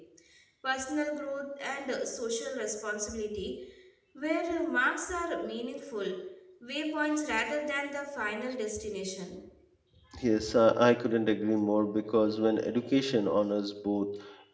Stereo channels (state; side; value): identical; both; correlation 1.00